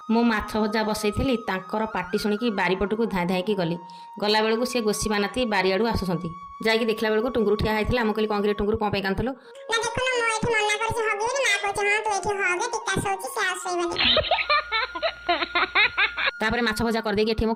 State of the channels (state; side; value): identical; both; correlation 1.00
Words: मु माछ भजा बसई पार्टी शुणिकी बारीपटू धाई धाई गली गला बेलू सी गोसी बानाती बारियाड़ू आसुँच जाकि देखला बेलू टुंगुरु ठिया होता मुझे कहली कौन टुंगुरु कौन कांदलु तापर माछ भजा करदेकी एठी